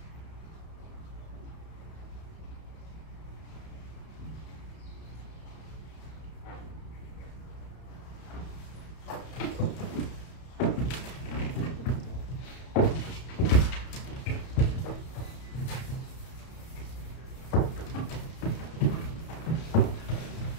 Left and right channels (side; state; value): right; late; 31 ms